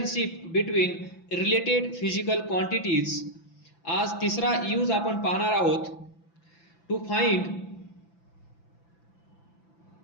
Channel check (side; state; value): right; late; 5.9 ms